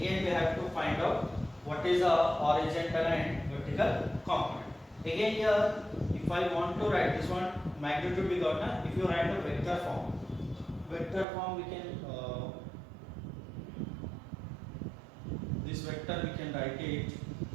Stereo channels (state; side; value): drops out; left; at 11.2 s